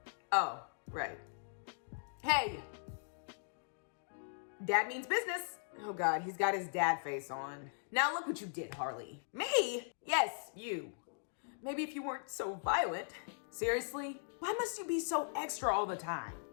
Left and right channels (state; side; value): silent; right; digital silence